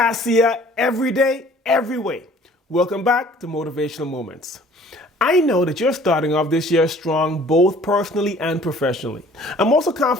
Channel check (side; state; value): both; normal; correlation 0.53